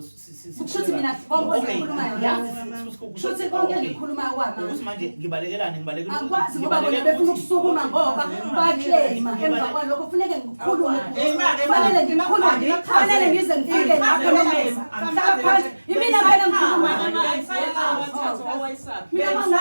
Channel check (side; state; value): both; inverted; correlation -1.00